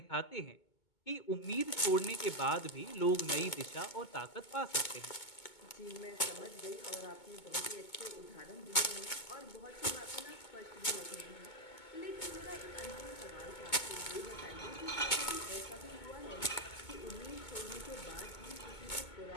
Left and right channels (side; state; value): right; late; 2.2 ms